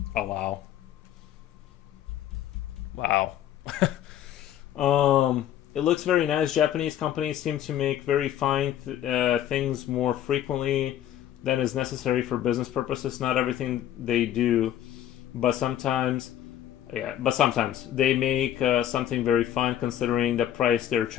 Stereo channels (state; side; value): quieter; right; 11.4 dB